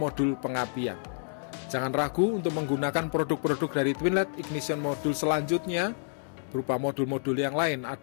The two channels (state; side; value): silent; right; digital silence